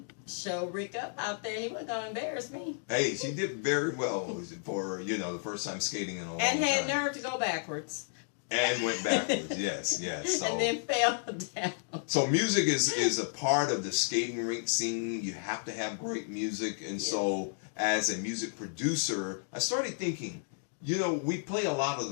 show Rick up out there. He wasn't going to embarrass me. Hey, she did very well for the first time skating in a long time. And had nerve to go backwards. And went backwards, yes. So, and then fell down. So music is a part of the skating rink scene. You have to have great music. And so as a music producer, I started thinking, we play a lot of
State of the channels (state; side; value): silent; right; digital silence